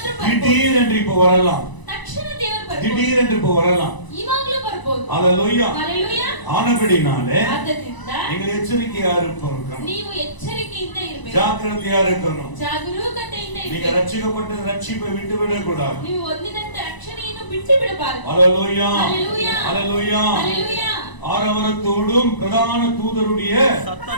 ಬರ್ಬೋದು. திடீர் என்று இப்ப வரலாம், ತಕ್ಷಣ ದೇವರು ಬರ್ಬೋದು. திடீர் என்று இப்ப வரலாம். ಇವಾಗ್ಲೂ ಬರ್ಬೋದು. ஹalleluya. ஹalleluya. ஆனபடினாலே ಆದ್ದರಿಂದ நீங்கள் எச்சரிக்கையா இருக்கணும், ನೀವು ಎಚ್ಚರಿಕೆಯಿಂದ ಇರಬೇಕು, ஜாக்கிரதையா இருக்கணும். ಜಾಗರೂಕತೆಯಿಂದ நீங்க ಇರಬೇಕು. ரட்சிக்கப்பட்ட ரட்சிப்பை விட்டு விடக்கூடாது. ನೀವು ಹೊಂದಿದಂತ ರಕ್ಷಣೆಯನ್ನು ಬಿಟ್ಟು ಬಿಡಬಾರದು. ஹalleluya. ஹalleluya. ஹalleluya. ஹalleluya. ஆரவாரத்தோடும் பிரதான தூதருடைய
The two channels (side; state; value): right; late; 1.0 ms